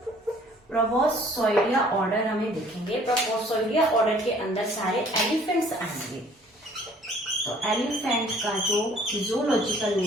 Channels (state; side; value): normal; both; correlation 0.56